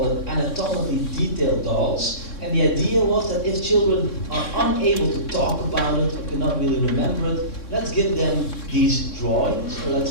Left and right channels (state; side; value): late; right; 3.6 ms